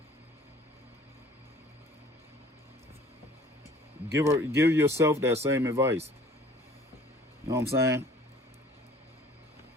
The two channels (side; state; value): both; normal; correlation 0.52